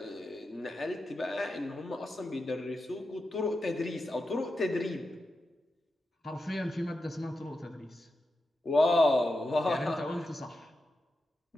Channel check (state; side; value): normal; both; correlation 0.89